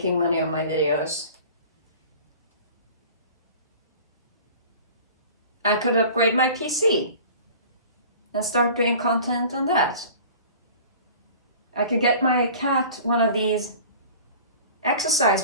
money on my videos, I could upgrade my PC and start doing content on that. I could get my cat one of these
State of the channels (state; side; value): inverted; both; correlation -0.43